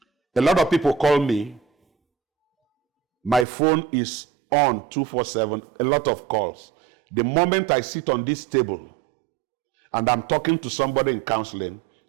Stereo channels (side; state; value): left; drops out; at 3.5 s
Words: A lot of people call me. My phone is on 24/7, a lot of calls. The moment I sit on this table and I'm talking to somebody in counseling,